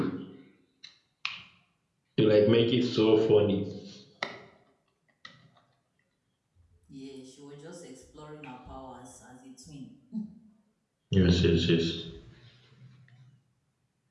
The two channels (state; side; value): identical; both; correlation 1.00